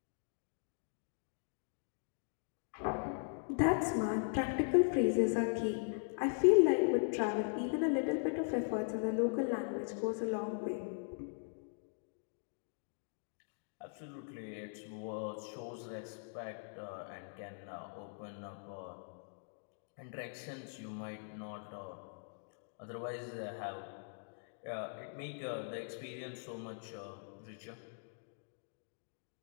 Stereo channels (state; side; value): silent; right; digital silence